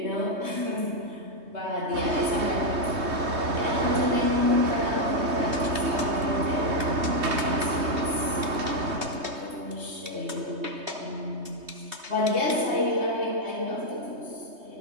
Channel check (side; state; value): left; late; 3.2 ms